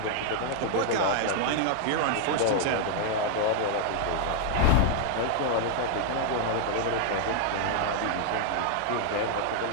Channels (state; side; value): different; both; correlation -0.01